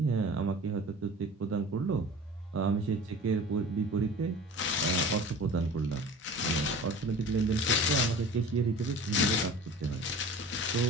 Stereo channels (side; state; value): both; normal; correlation 0.40